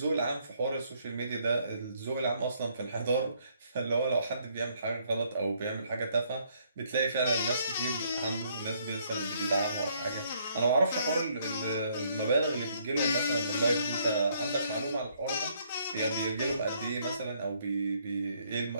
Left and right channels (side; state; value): both; inverted; correlation -0.68